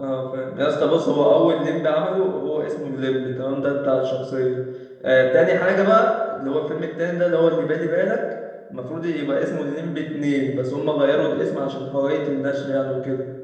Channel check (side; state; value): both; identical; correlation 1.00